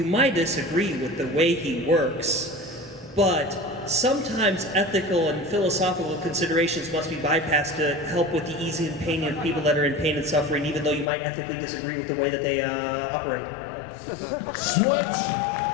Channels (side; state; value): right; drops out; at 11.1 s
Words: might disagree with the way he works, but sometimes ethical and philosophical considerations must be bypassed to help with the easing and pain of people that are in pain and suffering, even though you might ethically disagree with the way that they operate. Switch.